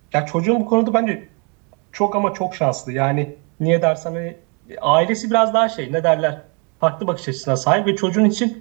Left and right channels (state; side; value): quieter; left; 34.8 dB